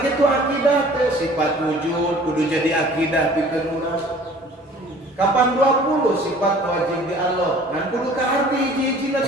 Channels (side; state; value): both; normal; correlation 0.50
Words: akidah teh sifat wujud kudu jadi akidah pikeun urang. Kapan 20 sifat wajib di Allah ngan kudu kaarti hiji-hijina